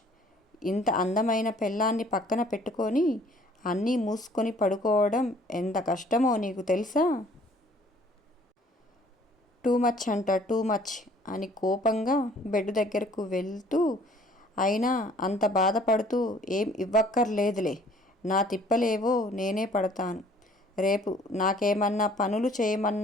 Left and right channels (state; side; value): normal; both; correlation 0.56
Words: ఇంత అందమైన పెళ్ళాన్ని పక్కన పెట్టుకొని అన్నీ మూసుకొని పడుకోవడం ఎంత కష్టమో నీకు తెలుసా? టూ మచ్ అంట, టూ మచ్ అని కోపంగా బెడ్ దగ్గరకు వెళ్తూ, అయినా అంత బాధపడుతూ ఏం ఇవ్వక్కర్లేదులే, నా తిప్పలేవో నేనే పడతాను. రేపు నాకేమన్నా పనులు